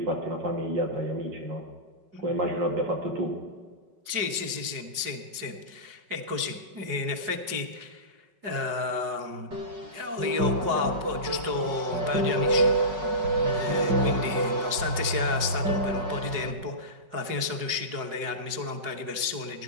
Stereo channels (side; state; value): left; late; 5.4 ms